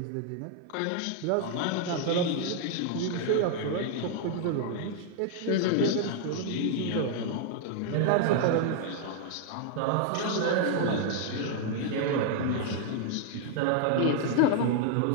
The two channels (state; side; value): different; both; correlation 0.00